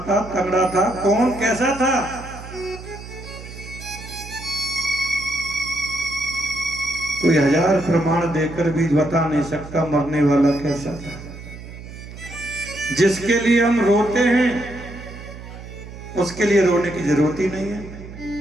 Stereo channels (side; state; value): right; noise; hum, 14 dB below the sound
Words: था, तगड़ा था, कौन कैसा था? कोई हजार प्रमाण देकर भी बता नहीं सकता मरने वाला कैसा था। जिसके लिए हम रोते हैं उसके लिए रोने की जरूरत ही नहीं है,